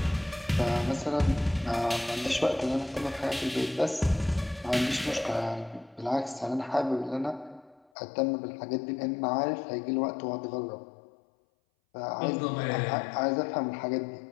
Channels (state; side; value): drops out; right; at 7.9 s